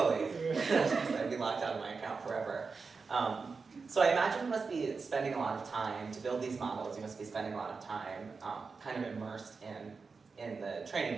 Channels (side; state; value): left; quieter; 4.7 dB